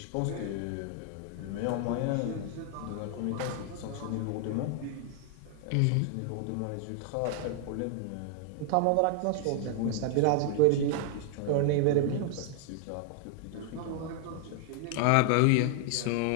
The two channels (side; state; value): both; different; correlation 0.00